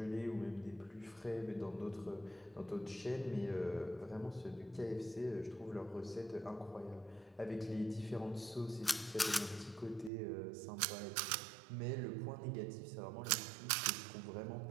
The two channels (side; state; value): left; drops out; at 10.1 s